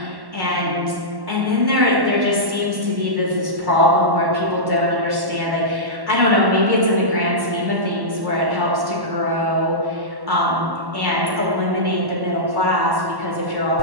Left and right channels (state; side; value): late; left; 1.1 ms